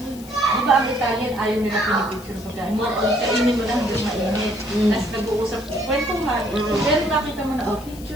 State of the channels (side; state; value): left; noise; hiss, 19 dB below the sound